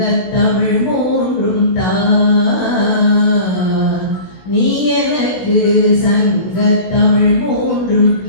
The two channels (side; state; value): right; late; 16 ms